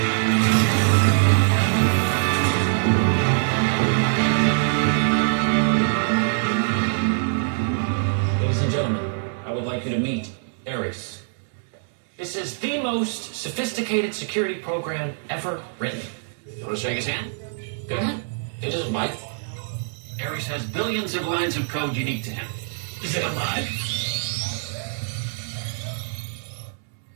Ladies and gentlemen, I would like you to meet Ares. This is the most sophisticated security program ever written. You want to shake his hand? Go ahead. It doesn't bite. Ares has billions of lines of code unique to him. Is it alive?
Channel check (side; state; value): left; silent; 63 dB below the other